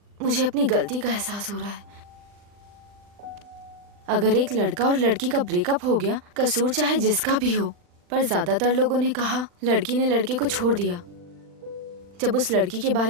मुझे अपनी गलती का एहसास हो रहा है। अगर एक लड़का और लड़की का ब्रेकअप हो गया, कसूर चाहे जिसका भी हो, पर ज्यादातर लोगों ने कहा लड़की ने लड़के को छोड़ दिया। जब उस लड़की के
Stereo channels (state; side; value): late; left; 40 ms